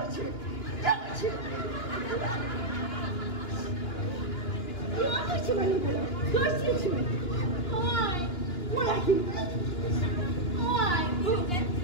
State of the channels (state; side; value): late; right; 2.9 ms